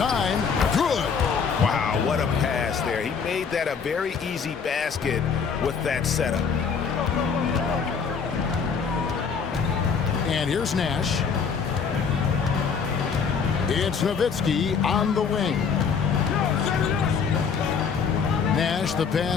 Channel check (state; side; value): quieter; right; 6.1 dB